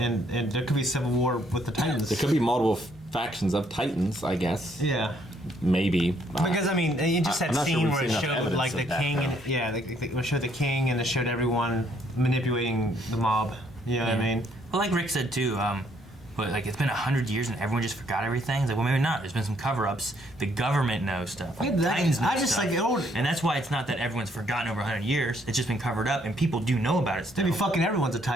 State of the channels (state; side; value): normal; both; correlation 0.68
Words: there could be a civil war with the Titans. There could be multiple factions of Titans, I guess. Yeah. Maybe. Because I mean, you just I'm had not sure scene we've where it seen enough showed evidence like the of that, king, and, though. yeah, it showed the king, and it showed everyone manipulating the mob. You know what I mean? Well, like Rick said too, but like it's been 100 years and everyone just forgot everything. It's like, well, maybe not. There's been some cover-ups. The government knows stuff. Like, Yeah, that- Titans know I just stuff. like old. And that's why it's not that everyone's forgotten over 100 years. It's just been covered up, and people do know about it still. Maybe fucking everyone's a